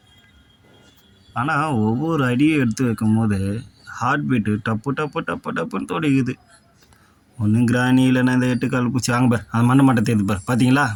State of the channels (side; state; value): both; identical; correlation 1.00